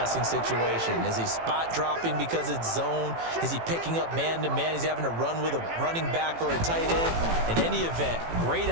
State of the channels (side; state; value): left; late; 18 ms